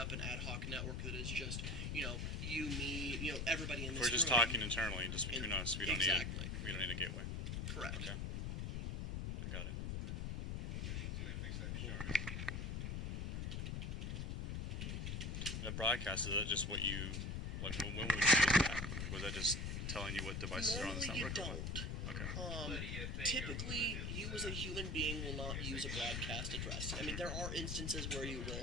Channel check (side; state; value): left; noise; rumble, 2 dB below the sound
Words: an ad hoc network that is just, you, me, everybody in this We're just room. talking internally, just between us. We don't Exactly. we don't need a gateway. Correct. Okay. I got it. Cool. The broadcast, is that just what you when would you use that? Was that just telling you what devices are on this Normally you network? Or don't. what? Okay. Typically, you as a human being will not use a broadcast address. I mean, there are instances where you